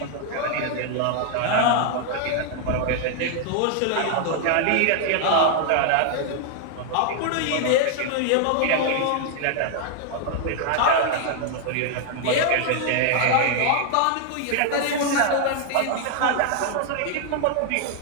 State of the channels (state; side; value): different; both; correlation 0.00